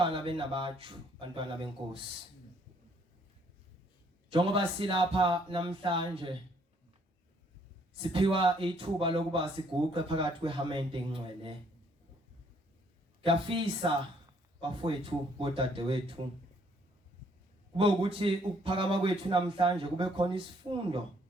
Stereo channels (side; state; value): both; normal; correlation 0.66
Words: benabatshu, bantwana benkosi. Njengoba silapha namhlanje siphiwa ithuba lokuba siguqe phakathi kwehamente engcwele. Ngiyafisa bafowethu bodadewethu kube ukuthi ukuphakama kwethu namhlanje kube khona isifundo